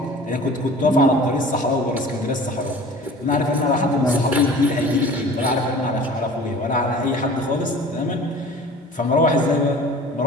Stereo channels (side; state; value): both; normal; correlation 0.43